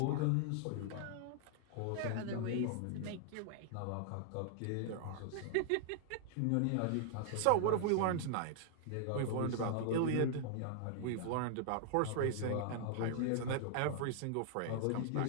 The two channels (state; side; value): different; both; correlation -0.01